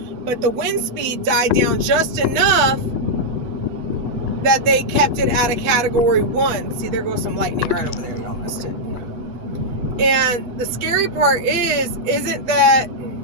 but the wind speed died down just enough that they kept it at a Category 1. See, there goes some lightning right over there. Y'all missed it. And the scary part isn't that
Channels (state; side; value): late; left; 8.1 ms